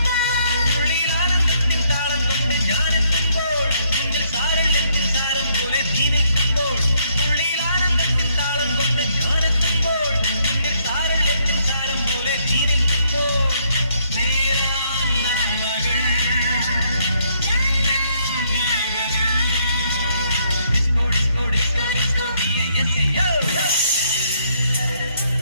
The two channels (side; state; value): both; inverted; correlation -0.70